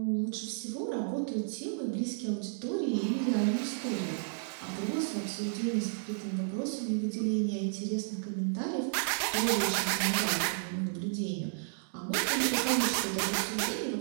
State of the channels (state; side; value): silent; left; digital silence